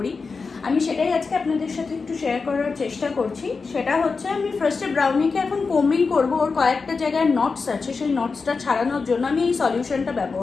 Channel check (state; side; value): quieter; right; 4.6 dB